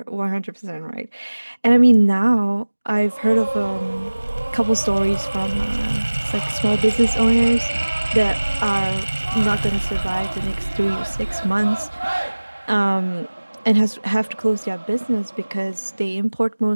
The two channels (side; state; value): both; inverted; correlation -1.00